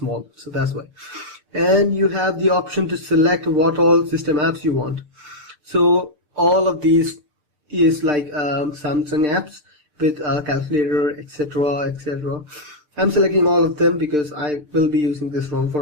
So that's why. And you have the option to select what all system apps you want. So all of these is like Samsung apps with calculator, etc. I'm selecting all of them because I will be using this ROM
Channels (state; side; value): late; left; 6.7 ms